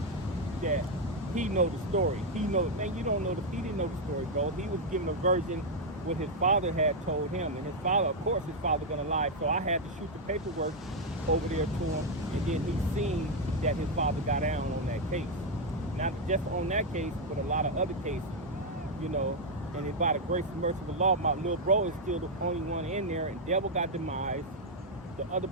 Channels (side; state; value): both; normal; correlation 0.00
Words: that he know the story. He knows, man, you don't know he didn't know the story, bro. He was given a version what his father had told him. And his father, of course, his father gonna lie. So I had to shoot the paperwork over there to him. And then he seen that his father got down on that case. Not just on that case, but a lot of other cases, you know. And by the grace and mercy of the law, my little bro is still the only one in there, and Devil got demised. The other